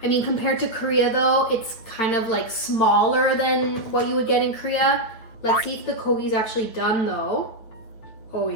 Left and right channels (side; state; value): right; late; 9.0 ms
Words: I mean, compared to Korea though, it's kind of like smaller than what you would get in Korea. Let's see if the kogi's actually done though. Oh